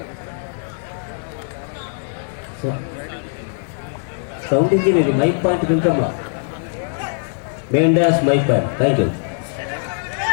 సౌండ్ ఇంజనీర్ మైక్ పాయింట్ కొంచెమ్మా. Main dash mic point. Thank you.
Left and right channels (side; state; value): right; silent; digital silence